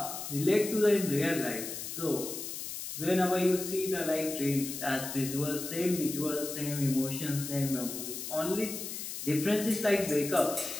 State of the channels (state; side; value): noise; left; hiss, 7 dB below the sound